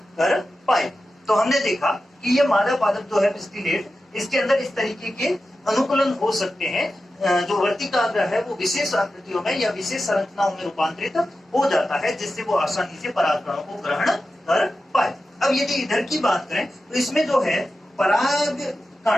कर पाए। तो हमने देखा कि ये मादा पादप जो है स्टिलेट, इसके अंदर इस तरीके के अनुकूलन हो सकते हैं। जो वर्तिकाग्र है वो विशेष आकृतियों में या विशेष संरचनाओं में रूपांतरित हो जाता है जिससे वो आसानी से परागकणों को ग्रहण कर पाए। अब यदि इधर की बात करें तो इसमें जो है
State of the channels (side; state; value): both; normal; correlation 0.92